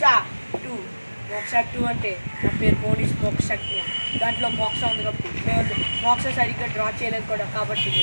2. మోక్ష 2 అంటే నా పేరు మోనీష్ మోక్ష 2. దాంట్లో మోక్ష ఉంది కాబట్టి మేము మోక్ష సరిగ్గా డ్రా చేయలేదు కూడా, కాబట్టి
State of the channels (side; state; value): both; inverted; correlation -1.00